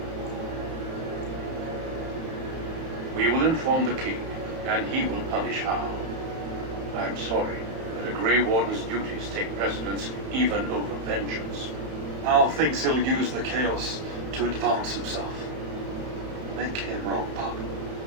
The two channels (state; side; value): late; left; 31 ms